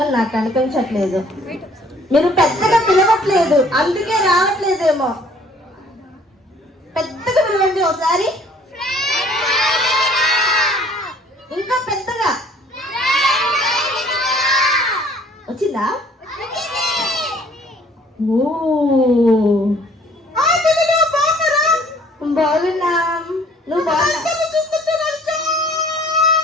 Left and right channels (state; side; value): normal; both; correlation 0.57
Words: నాకు కనిపించట్లేదు. మీరు పెద్దగా పిలవట్లేదు, అందుకే రావట్లేదేమో. పెద్దగా పిలవండి ఒకసారి, ఇంకా పెద్దగా. వచ్చిందా? ఓ, బాగున్నాం. నువ్వు బాగున్నా?